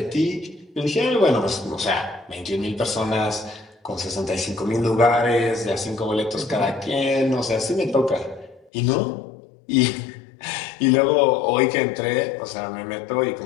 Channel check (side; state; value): right; drops out; at 8.7 s